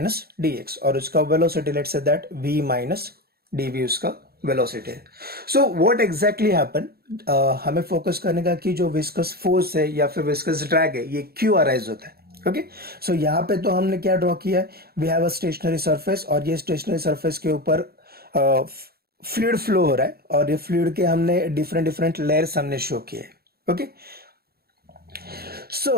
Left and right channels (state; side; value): late; left; 0.45 ms